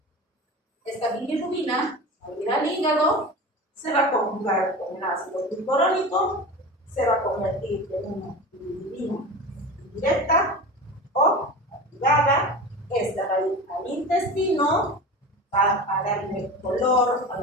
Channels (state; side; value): normal; both; correlation 0.31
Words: Esta bilirrubina, al ir al hígado, se va a conjugar con el ácido glucurónico, se va a convertir en una bilirrubina indirecta o activada esta va a ir al intestino, va a darle color a